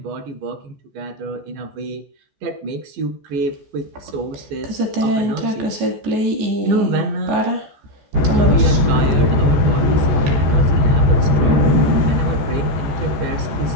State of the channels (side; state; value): left; late; 14 ms